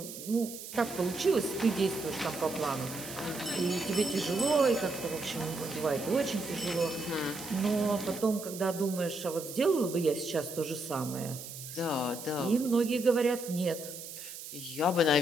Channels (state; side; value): noise; right; hiss, 11 dB below the sound